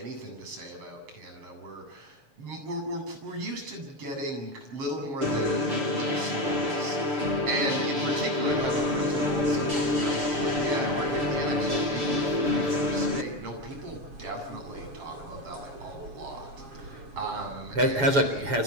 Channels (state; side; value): late; left; 6.8 ms